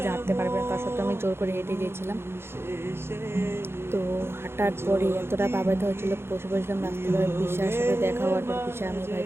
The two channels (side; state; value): left; late; 0.12 ms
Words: যে হাঁটতে পারবে না, তার সত্ত্বেও আমি জোর করে হেঁটে গিয়েছিলাম। তো হাঁটার পরে এতটা পাবাইতে হয়েছিল, বসে বসেছিলাম রাস্তায়। পিসার সাথে দেখা হওয়ার পর পিসা আমি ভাই